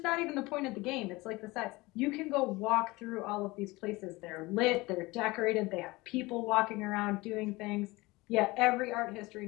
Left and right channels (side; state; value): right; quieter; 21.8 dB